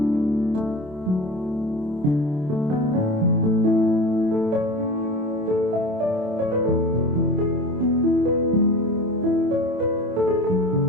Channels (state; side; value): late; left; 27 ms